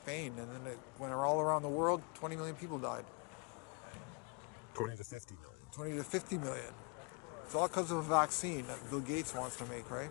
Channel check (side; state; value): right; quieter; 34.8 dB